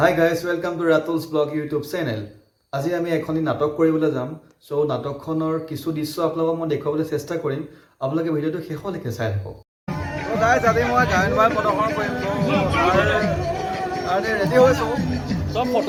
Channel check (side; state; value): both; identical; correlation 1.00